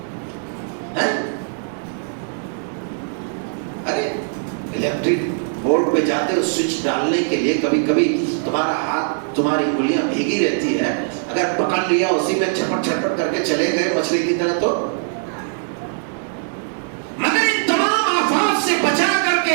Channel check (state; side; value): silent; left; digital silence